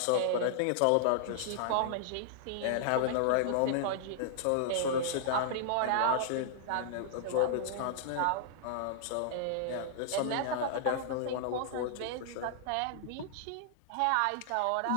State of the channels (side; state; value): both; different; correlation -0.01